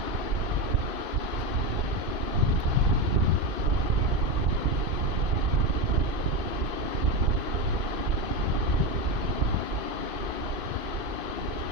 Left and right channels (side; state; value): left; late; 2.5 ms